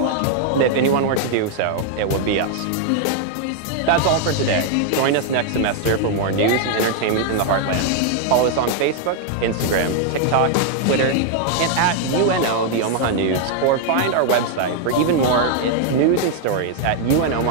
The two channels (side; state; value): both; different; correlation 0.00